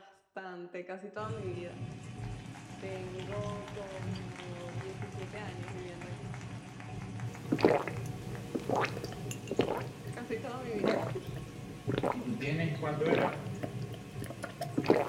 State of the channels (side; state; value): both; identical; correlation 1.00